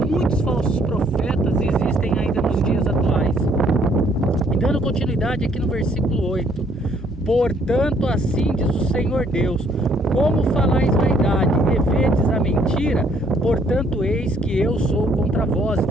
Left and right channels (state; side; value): normal; both; correlation 0.65